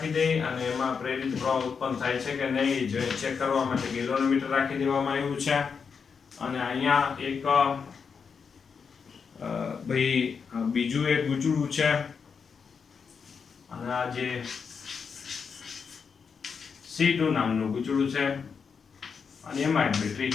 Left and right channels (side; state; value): right; quieter; 6.0 dB